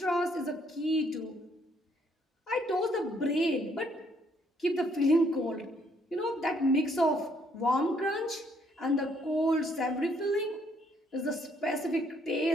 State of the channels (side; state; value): both; normal; correlation 0.68